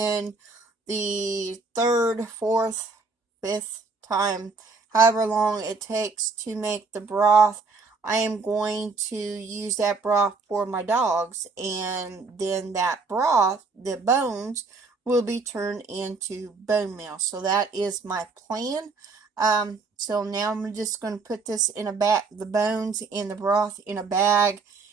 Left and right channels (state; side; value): quieter; left; 4.2 dB